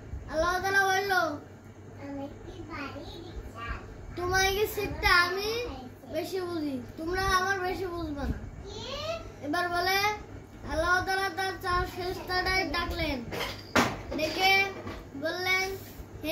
আল্লাহ তাআলা বলল তোমার কি সিটটা আমি বেশি বুঝি, তোমরা আমার বেশি বুঝবে না। এবার বলে আল্লাহ তাআলা তার চার ফেরেশতাদের ডাকলেন, ডেকে বললেন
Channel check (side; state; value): both; identical; correlation 1.00